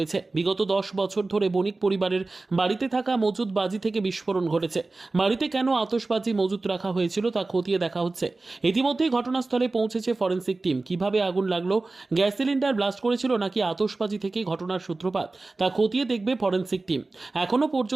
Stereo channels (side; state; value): left; quieter; 3.4 dB